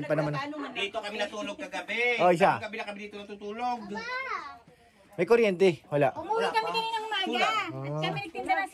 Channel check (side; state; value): both; identical; correlation 1.00